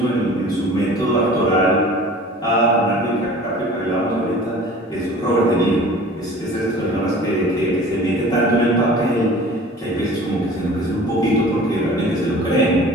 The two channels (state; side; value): normal; both; correlation 0.44